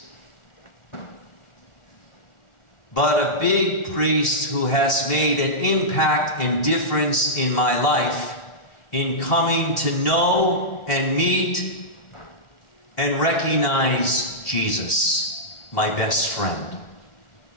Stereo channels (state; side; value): late; right; 1.4 ms